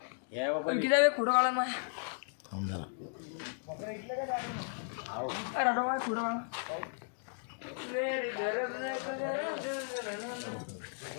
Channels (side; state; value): right; silent; digital silence